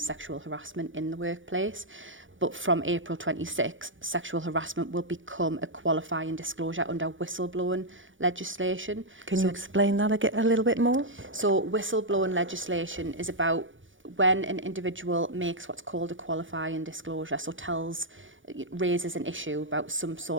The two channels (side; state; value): left; late; 0.56 ms